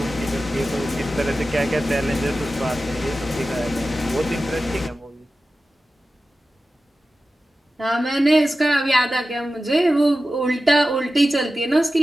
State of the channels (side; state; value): both; normal; correlation 0.94